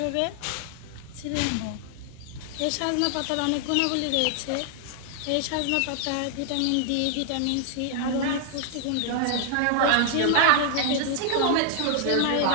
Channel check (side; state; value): both; different; correlation 0.00